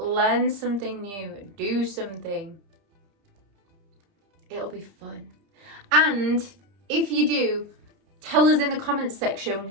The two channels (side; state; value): left; late; 30 ms